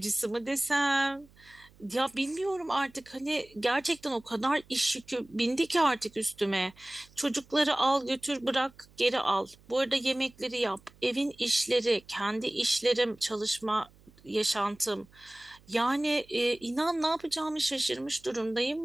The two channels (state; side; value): noise; right; hum, 27 dB below the sound